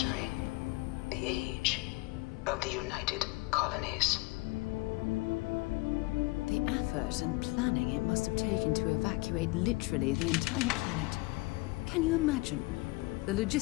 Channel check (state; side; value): quieter; right; 23.5 dB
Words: the age of the United Colonies. The effort and planning it must have taken to evacuate literally the entire planet. Can you imagine? The